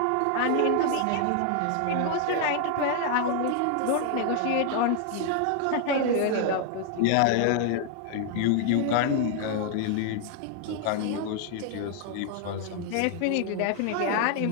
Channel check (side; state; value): both; different; correlation 0.00